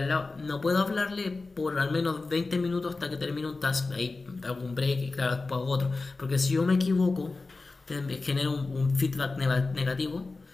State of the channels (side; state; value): right; quieter; 3.6 dB